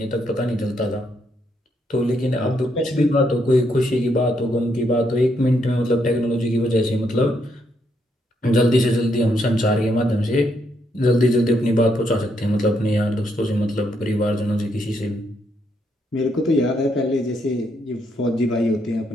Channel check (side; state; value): both; normal; correlation 0.76